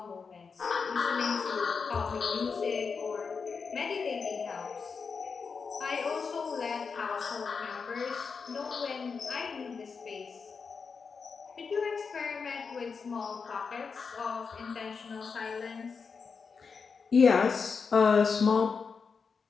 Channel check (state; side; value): quieter; right; 5.3 dB